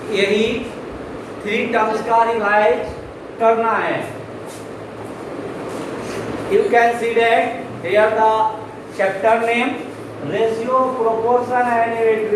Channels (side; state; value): both; identical; correlation 1.00